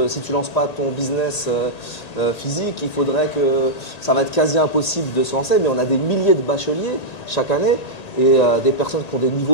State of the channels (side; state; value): right; late; 1.9 ms